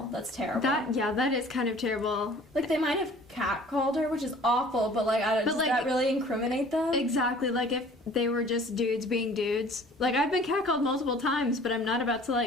That's terrible. That is kind of terrible. Like, they might have catcalled her, which is awful, but, like, does that really incriminate them? Exactly. Like, if they were just dudes being dudes. Like, I've been catcalled multiple times, but I'm not about to,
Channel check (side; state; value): both; normal; correlation 0.50